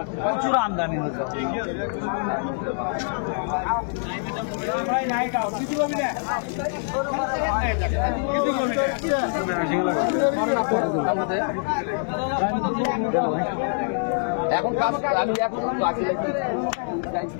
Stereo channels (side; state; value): right; silent; 62 dB below the other